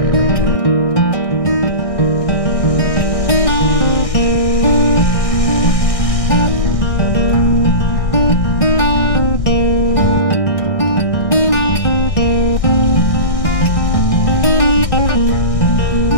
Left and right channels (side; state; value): right; late; 1.6 ms